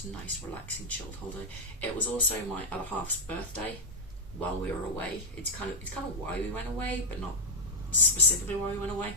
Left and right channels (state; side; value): normal; both; correlation -0.01